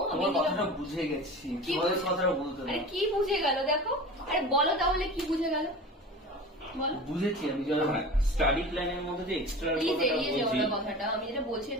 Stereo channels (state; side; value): normal; both; correlation 0.35